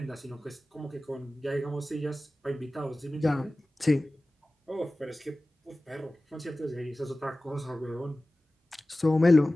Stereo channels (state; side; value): normal; both; correlation 0.97